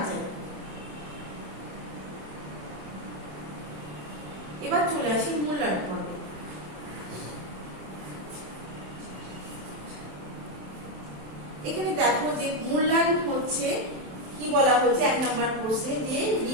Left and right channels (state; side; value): late; left; 27 ms